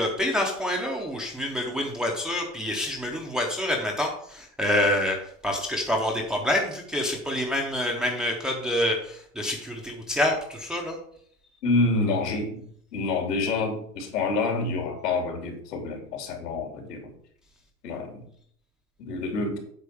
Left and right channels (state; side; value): normal; both; correlation 0.39